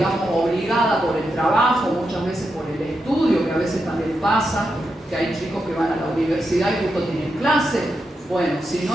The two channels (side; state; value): both; normal; correlation 0.85